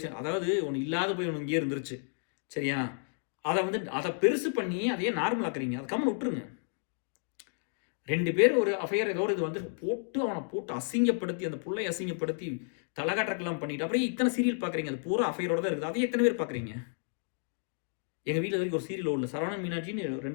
அதாவது ஒன்று இல்லாத போய் ஒன்று இங்கேயே இருந்துருச்சு, சரியா? அதை பெருசு பண்ணி அதையே நார்மல் ஆக்குறீங்க, அதை கம்மன் விட்டுருங்க. 2 பேர் ஒரு அஃபையர் ஏதோ ஒரு இது வந்து அவனை போட்டு அசிங்கப்படுத்தி, அந்த புள்ளை அசிங்கப்படுத்தி தலைகாட்டலாம் பண்ணிட்டு அப்புறம் இத்தனை சீரியல் பார்க்குறீங்க, அது பூரா அஃபையரோட தான் இருக்குது, அதை எத்தனை பேர் பார்க்குறீங்க? எங்கள் வீட்டில் வரைக்கும் ஒரு சீரியல் ஓடல, சரவணன் மீனாட்சின்னு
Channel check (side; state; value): right; silent; 57 dB below the other